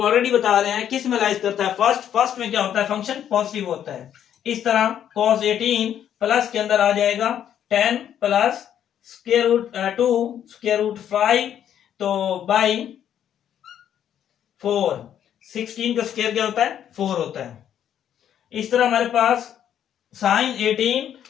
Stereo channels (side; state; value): right; quieter; 9.9 dB